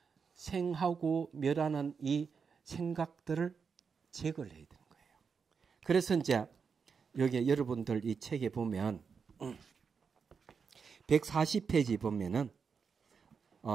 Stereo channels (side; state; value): left; quieter; 5.9 dB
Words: 생하고 멸하는 이 생각들을 제거를 해야 되는 거예요. 그래서 이제 여기 여러분들 이 책에 보면 140페이지 보면은